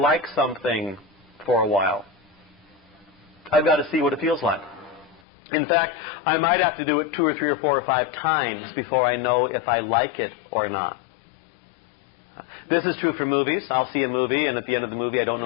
something for a while. I've got to see what it feels like. In fact, I might have to do it 2 or 3 or 4 or 5 times before I know if I like it or not. This is true for movies. I'll see a movie, and at the end of the movie I don't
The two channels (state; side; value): drops out; right; at 5.2 s